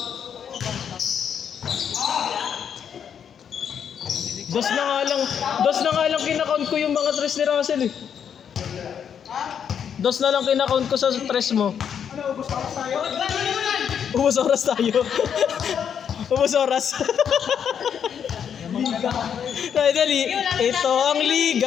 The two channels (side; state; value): right; quieter; 8.0 dB